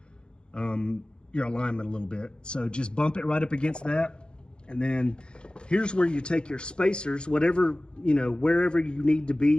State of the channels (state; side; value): late; right; 0.052 ms